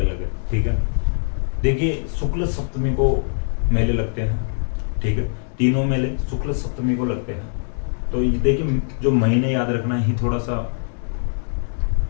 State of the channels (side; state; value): right; silent; digital silence